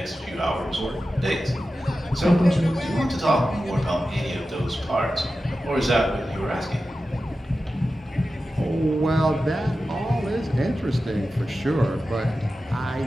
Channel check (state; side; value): normal; both; correlation 0.93